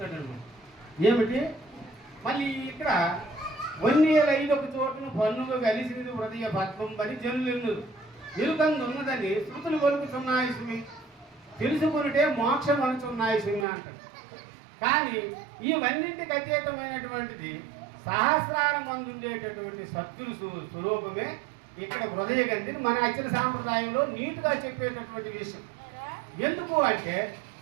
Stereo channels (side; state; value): left; drops out; at 13.7 s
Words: అనమాట. ఏమిటి మళ్ళీ ఇక్కడ వన్నేలైదొక చోటును పన్నుగా కలిసినది హృదయ పద్మం పని జనులు ఎరుకందున్నదని శృతులు కొలుకుతున్నాయి సుమి, తెలుసుకునిటే మోక్షం అనుచున్నాయి సుమి అంటారు. కానీ ఇవన్నింటికి అతీతమైనటువంటిది సహస్రాల మందు ఉండేటటువంటి సత్తులు స్వరూపమే ఇక్కడ హృదయ గంధిని మన అచ్చల సాంప్రదాయంలో నీట్గా చెప్పేటటువంటి విషయం. ఎందుకు అంటే